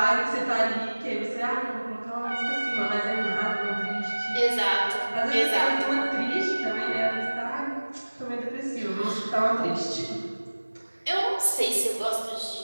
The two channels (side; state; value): both; inverted; correlation -1.00